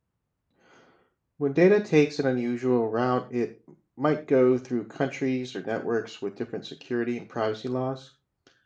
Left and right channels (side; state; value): both; identical; correlation 1.00